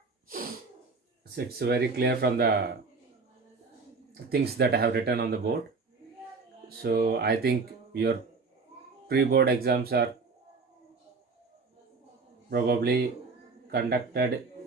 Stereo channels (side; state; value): left; quieter; 4.3 dB